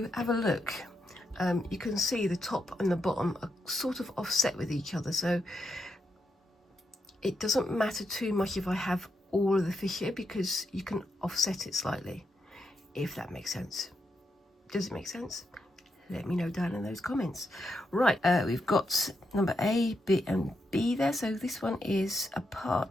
have a look, you can see the top and the bottom are sort of offset with each other. So it doesn't matter too much if I have all of the fish here, because you can offset it slightly, if that makes sense. Does it make sense? Let me know down in those comments. Right, we've got number A, B and B there. So this one is a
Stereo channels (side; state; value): both; normal; correlation 0.83